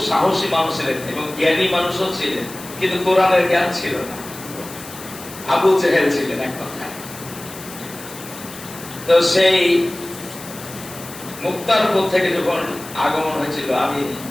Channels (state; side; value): noise; left; hiss, 15 dB below the sound